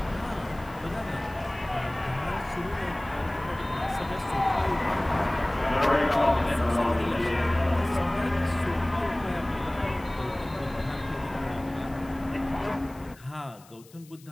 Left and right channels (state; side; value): noise; left; hiss, 25 dB below the sound